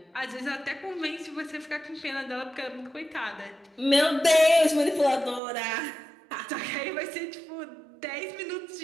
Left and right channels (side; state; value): left; drops out; at 5.4 s